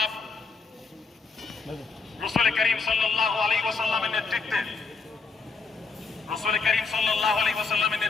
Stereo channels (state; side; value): quieter; right; 4.5 dB